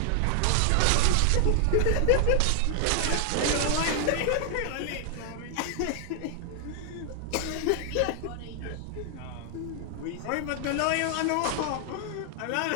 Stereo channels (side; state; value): both; different; correlation 0.00